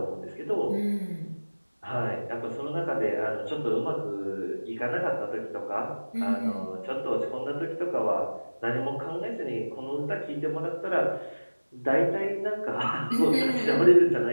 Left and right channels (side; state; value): both; inverted; correlation -1.00